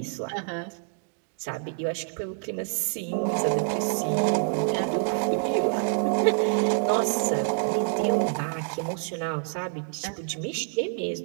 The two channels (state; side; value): silent; left; digital silence